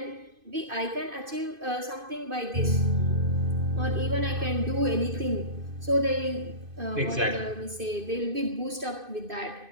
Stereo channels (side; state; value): left; late; 2.5 ms